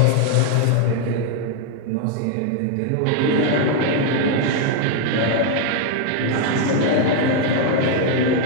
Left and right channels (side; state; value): both; different; correlation 0.00